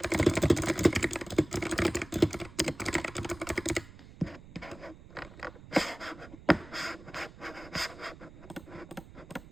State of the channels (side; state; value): right; noise; rumble, 18 dB below the sound